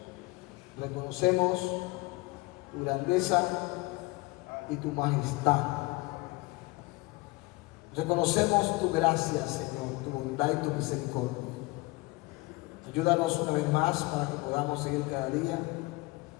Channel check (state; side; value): quieter; right; 23.5 dB